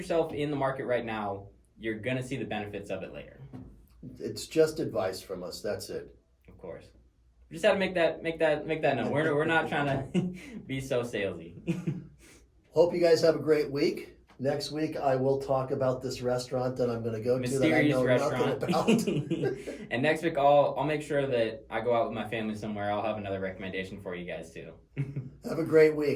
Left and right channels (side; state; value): both; identical; correlation 1.00